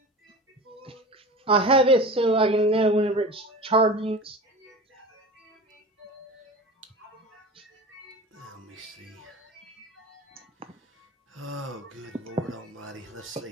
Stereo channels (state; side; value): normal; both; correlation 0.33